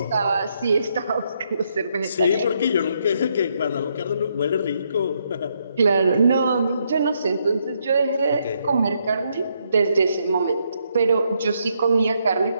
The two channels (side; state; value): both; inverted; correlation -0.76